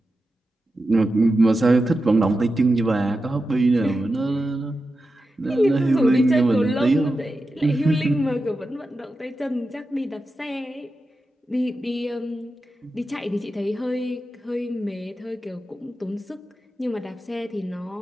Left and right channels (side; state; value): both; normal; correlation 0.91